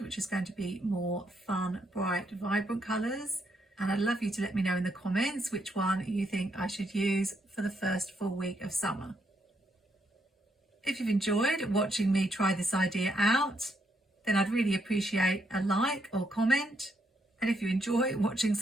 which is going to be more fun, bright, vibrant colours. And I'd love you to let me know in the comments which one you think I should use for the first full week of summer. If you've enjoyed watching me try this idea out, then I'd really appreciate a like or comment. And if you enjoy watching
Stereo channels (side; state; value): both; normal; correlation 0.76